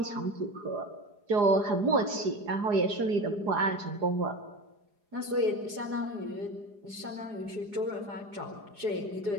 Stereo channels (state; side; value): late; left; 4.8 ms